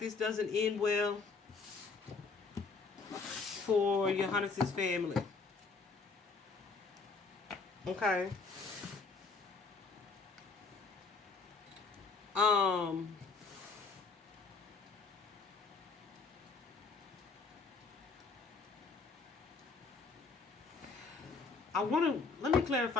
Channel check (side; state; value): right; quieter; 4.5 dB